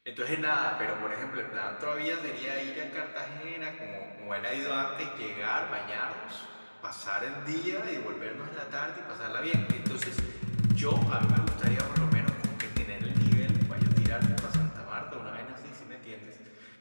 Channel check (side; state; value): both; inverted; correlation -1.00